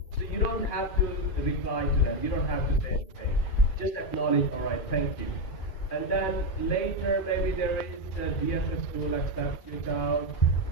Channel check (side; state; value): right; late; 2.4 ms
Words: So you don't have to reply to them. You don't have to say anything. Just acknowledge, all right, thank you. And then later, maybe there is a DSS school accepts your child,